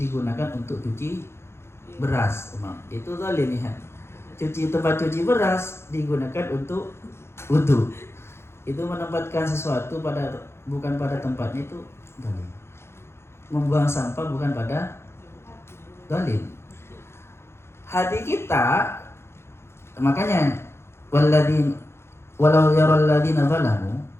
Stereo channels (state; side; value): late; right; 0.12 ms